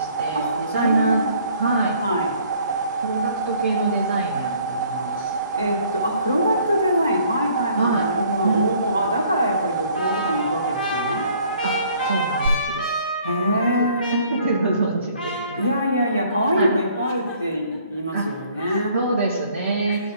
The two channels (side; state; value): both; inverted; correlation -0.59